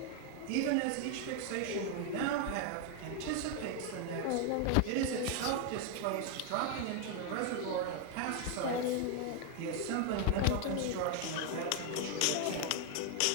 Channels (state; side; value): different; both; correlation 0.01